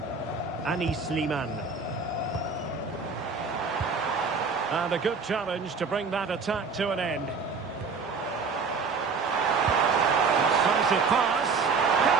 Anis Sliman. And a good challenge to bring that attack to an end. Decisive pass.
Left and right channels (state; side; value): quieter; left; 4.9 dB